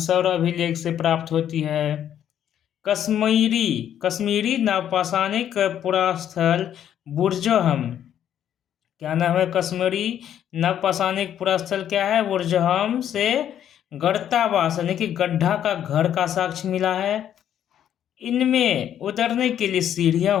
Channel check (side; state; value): right; quieter; 10.1 dB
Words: अभिलेख से प्राप्त होती है। कश्मीरी नवपाषाणिक पुरास्थल बुर्जहम, क्या नाम है? कश्मीरी नवपाषाणिक पुरास्थल क्या है? बुर्जहम से गढ़तावास यानी कि गड्ढा का घर का साक्ष्य मिला है। इनमें उतरने के लिए सीढ़ियां